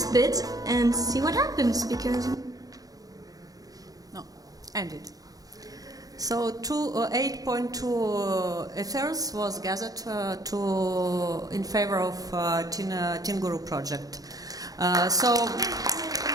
bit and see what happens, because... No, ended. So 8.2 ethers was gathered in favor of Teen Guru project.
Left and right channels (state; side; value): late; left; 0.18 ms